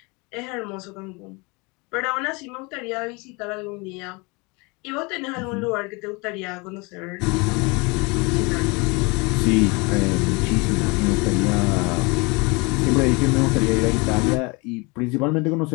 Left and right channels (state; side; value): quieter; right; 28.1 dB